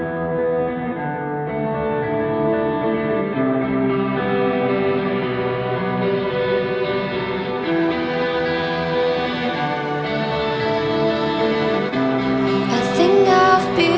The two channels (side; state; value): both; identical; correlation 1.00